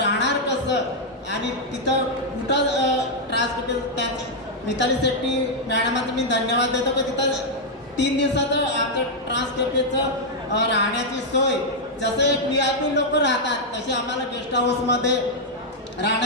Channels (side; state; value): both; normal; correlation -0.03